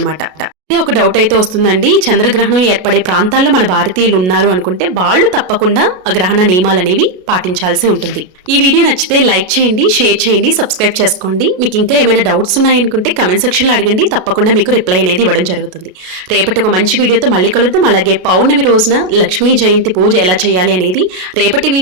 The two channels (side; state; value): left; late; 33 ms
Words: ఒక డౌట్ అయితే వస్తుందండి, చంద్రగ్రహణం ఏర్పడే ప్రాంతాల్లో మన భారతీయులు ఉన్నారు అనుకుంటే వాళ్ళు తప్పకుండా ఆ గ్రహణ నియమాలు అనేవి పాటించాల్సి ఉంటుంది. ఈ వీడియో నచ్చితే లైక్ చేయండి, షేర్ చేయండి, సబ్స్క్రైబ్ చేసుకోండి. మీకు ఇంకా ఏమైనా డౌట్స్ ఉన్నాయనుకుంటే కమెంట్ సెక్షన్లో అడగండి, తప్పకుండా మీకు రిప్లై అనేది ఇవ్వడం జరుగుతుంది. రేపటి ఒక మంచి వీడియోతో మళ్ళీ కలుద్దాం. అలాగే పౌర్ణమి రోజున లక్ష్మీ జయంతి పూజ ఎలా చేయాలి అనేది రేపటి